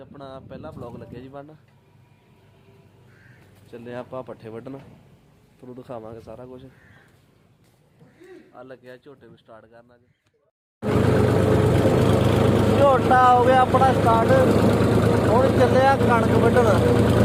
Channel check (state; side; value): identical; both; correlation 1.00